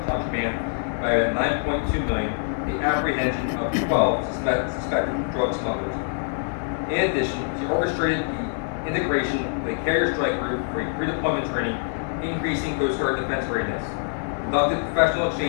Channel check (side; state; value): right; silent; 61 dB below the other